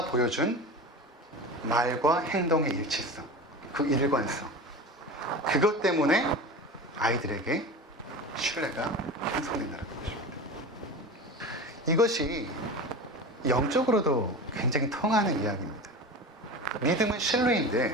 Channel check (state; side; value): normal; both; correlation 0.30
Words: 보여준 말과 행동의 일치성, 그 일관성, 그것 때문에 아이들에게 신뢰가 형성된다는 것입니다. 이것이 영적으로도 굉장히 통하는 이야기입니다. 믿음은